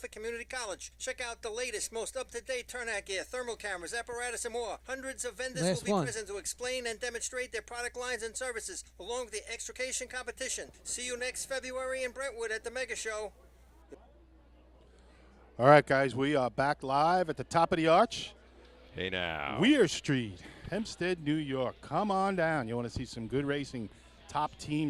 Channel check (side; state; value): both; identical; correlation 1.00